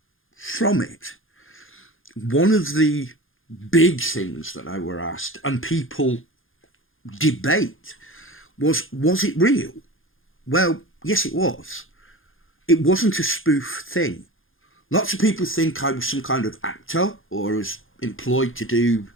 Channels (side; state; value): right; late; 0.59 ms